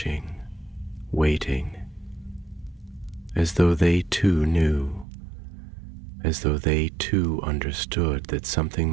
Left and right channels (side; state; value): left; drops out; at 5.1 s